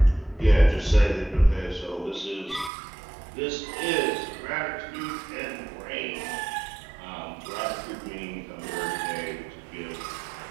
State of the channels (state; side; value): drops out; left; at 2.7 s